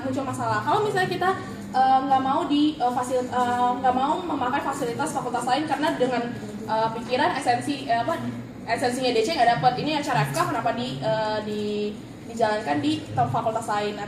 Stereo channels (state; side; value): identical; both; correlation 1.00